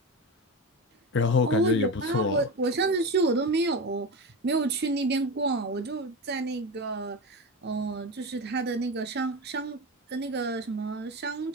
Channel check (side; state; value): both; normal; correlation 0.22